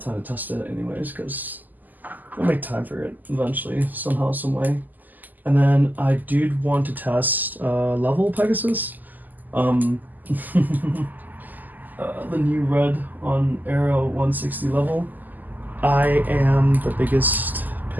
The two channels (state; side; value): late; left; 0.084 ms